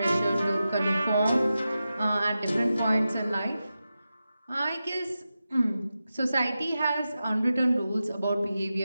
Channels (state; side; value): inverted; both; correlation -0.92